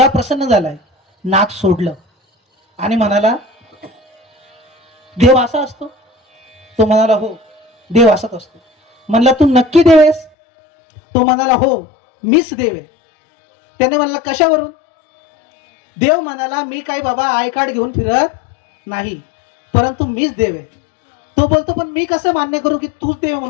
प्रसन्न झालाय, नाक सोडलं आणि म्हणाला देव असा असतो? तो म्हणाला हो, देव असाच असतो. म्हणला तू नक्की देव आहेस? तो म्हणाला हो, मीच देव आहे. त्याने म्हणला कशावरून? देव म्हणाला मी काय बाबा आय कार्ड घेऊन फिरत नाही, परंतु मीच देव आहे. तो बोलतो पण मी कसं मान्य करू की तूच देव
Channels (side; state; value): right; drops out; at 10.3 s